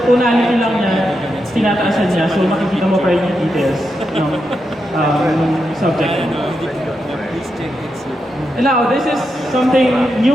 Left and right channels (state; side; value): normal; both; correlation 0.85